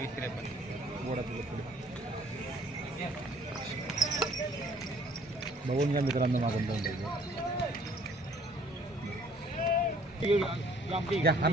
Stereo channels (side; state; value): both; normal; correlation 0.57